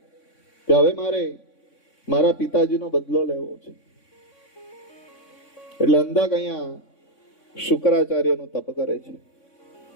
કે હવે મારે મારા પિતાજીનો બદલો લેવો છે. એટલે અંધક અહીંયા શુક્રાચાર્યનું તપ કરે છે.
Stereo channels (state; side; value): late; right; 3.6 ms